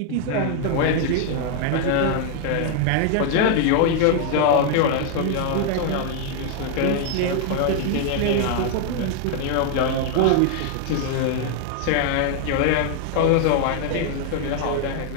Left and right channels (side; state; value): both; different; correlation 0.00